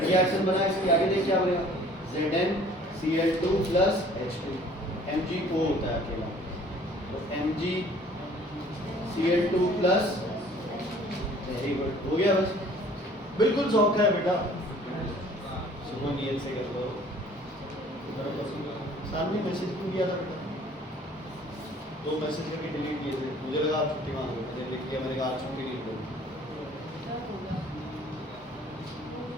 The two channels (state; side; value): normal; both; correlation 0.53